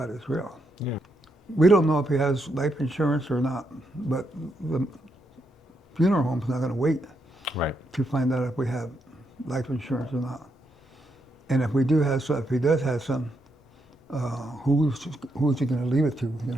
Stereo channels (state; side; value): normal; both; correlation 0.80